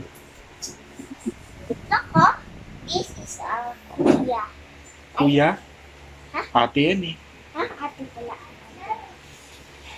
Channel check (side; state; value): both; identical; correlation 1.00